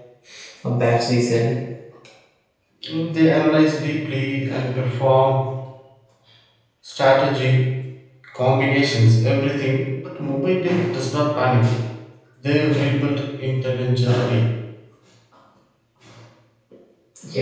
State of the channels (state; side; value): identical; both; correlation 1.00